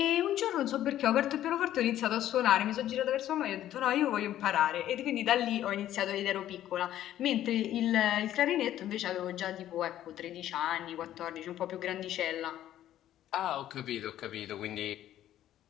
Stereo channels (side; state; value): right; quieter; 12.4 dB